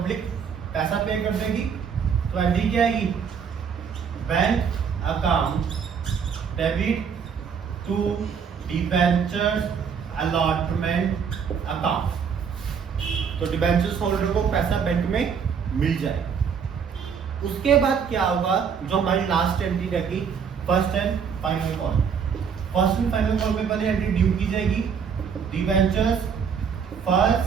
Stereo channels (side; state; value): left; quieter; 6.8 dB